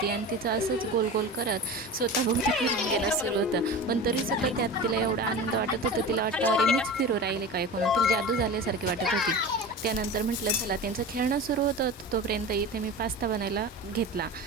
आणि तिचं असंच गोल गोल करत स्वतःभोवती फिरून घेणं सुरू होतं. पण तरीसुद्धा त्यात तिला एवढा आनंद वाटत होता. तिला वाटतं अरे मीच फिरू राहिले काय कोण, तिला जादू झाल्यासारखी वाटत होती. त्यानंतर म्हटलं चला त्यांचं खेळणं सुरू होतं. तोपर्यंत इथे मी पास्ता बनायला घेतला.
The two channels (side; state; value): both; normal; correlation 0.31